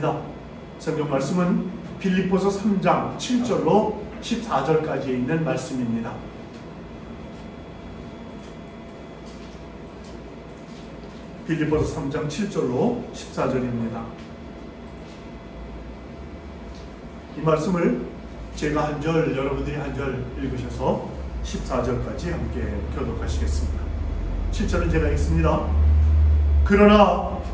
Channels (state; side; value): identical; both; correlation 1.00